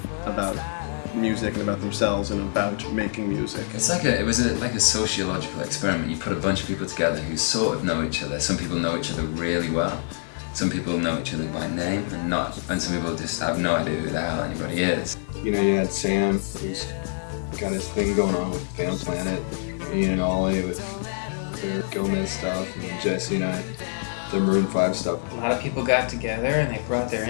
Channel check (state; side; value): silent; right; 61 dB below the other